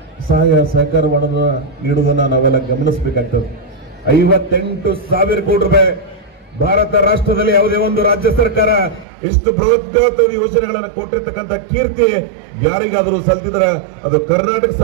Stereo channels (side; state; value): left; drops out; at 9.1 s